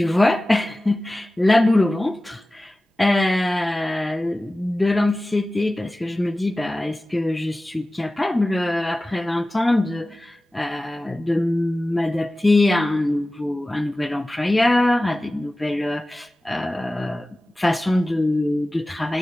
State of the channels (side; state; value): both; normal; correlation 0.96